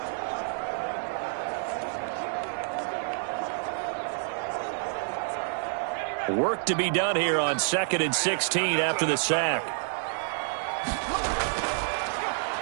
Work to be done here on 2nd and 16 after the sack.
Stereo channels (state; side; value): silent; left; 59 dB below the other